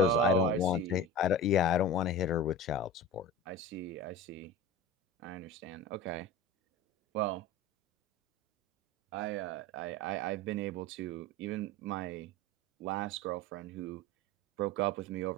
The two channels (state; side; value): normal; both; correlation 0.32